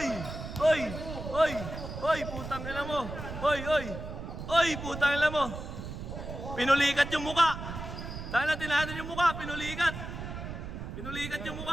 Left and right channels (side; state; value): right; noise; rumble, 8 dB below the sound